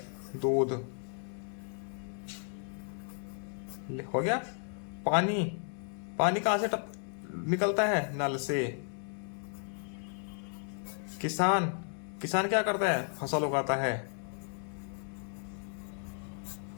दूध। हो गया। पानी, पानी कहाँ से निकलता है? नल से। किसान, किसान क्या करता है? फसल उगाता है।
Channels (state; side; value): silent; right; 55 dB below the other